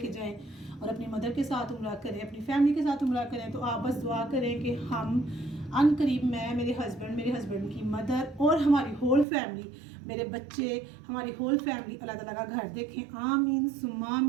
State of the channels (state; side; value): drops out; left; at 9.2 s